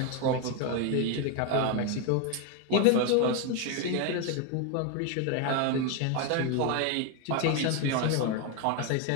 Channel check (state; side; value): different; both; correlation 0.02